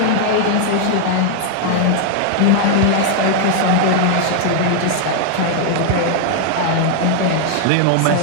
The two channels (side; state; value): both; different; correlation 0.00